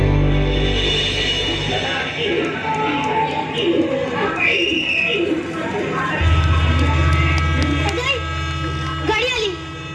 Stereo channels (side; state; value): both; identical; correlation 1.00